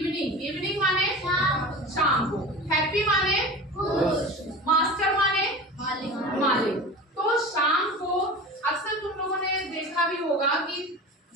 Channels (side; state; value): both; normal; correlation 0.33